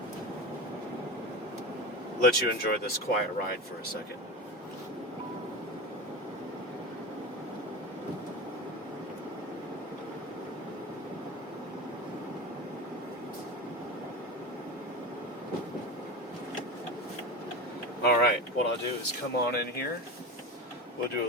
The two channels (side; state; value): both; normal; correlation 0.26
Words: let you enjoy this quiet ride for a second. Alright, what I'll do is come on in here. We'll do